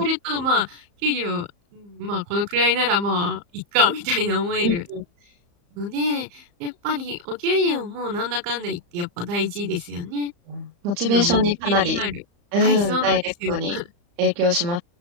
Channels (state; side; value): late; left; 35 ms